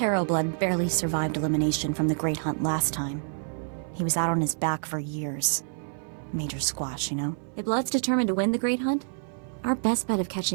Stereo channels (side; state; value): left; silent; 60 dB below the other